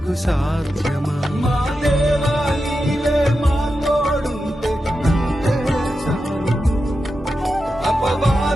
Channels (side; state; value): both; normal; correlation 0.90